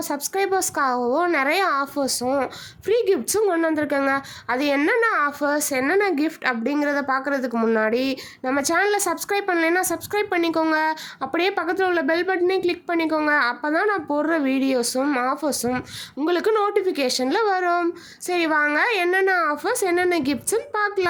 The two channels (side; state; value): both; identical; correlation 1.00